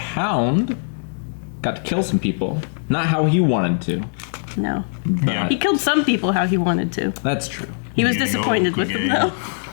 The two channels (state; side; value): silent; right; digital silence